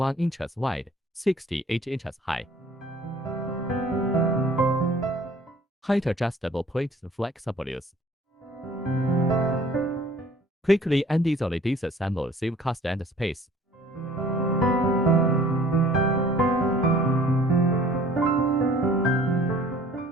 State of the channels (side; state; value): both; normal; correlation 0.53